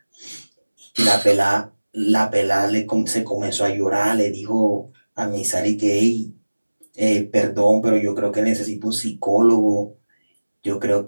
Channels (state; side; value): inverted; both; correlation -1.00